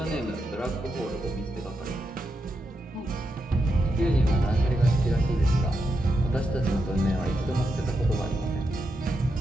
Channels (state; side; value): normal; both; correlation 0.85